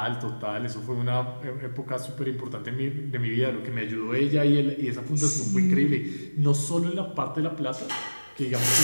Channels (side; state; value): both; inverted; correlation -1.00